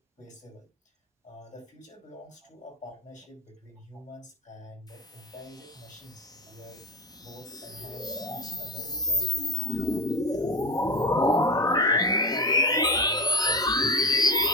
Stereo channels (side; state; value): both; normal; correlation 0.21